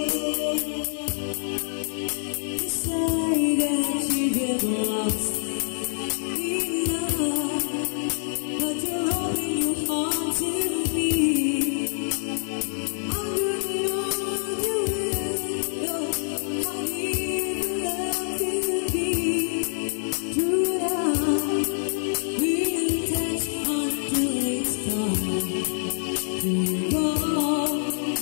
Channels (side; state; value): right; silent; digital silence